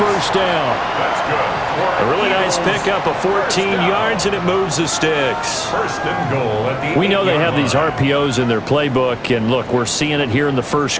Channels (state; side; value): identical; both; correlation 1.00